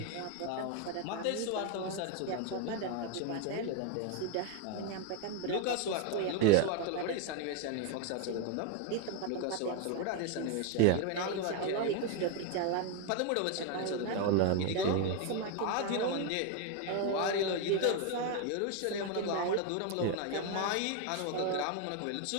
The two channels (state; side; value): different; both; correlation 0.01